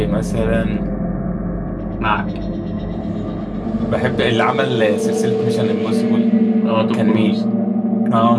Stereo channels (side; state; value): both; identical; correlation 1.00